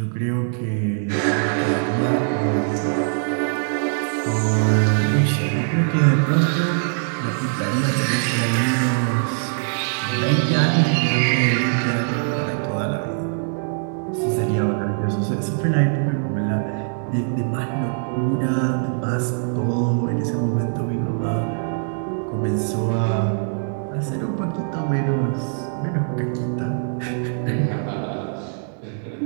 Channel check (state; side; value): silent; left; 63 dB below the other